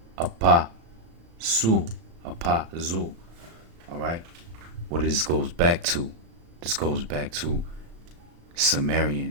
apazu. All right? What this goes back to? This goes back to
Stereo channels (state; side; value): late; left; 36 ms